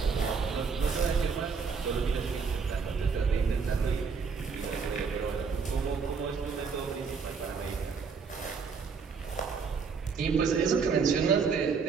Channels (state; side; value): quieter; left; 5.4 dB